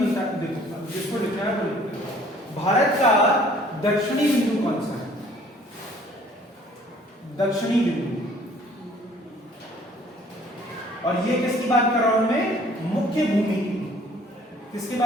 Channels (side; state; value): both; normal; correlation 0.56